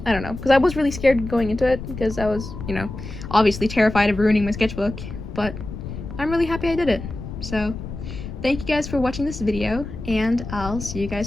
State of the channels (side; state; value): left; noise; rumble, 9 dB below the sound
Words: I don't know, because I was really scared going into it, because I was, you know, obviously terrified of ruining my sketchbook, but I'm really happy I did it. So thank you guys for watching this video, and I'll see you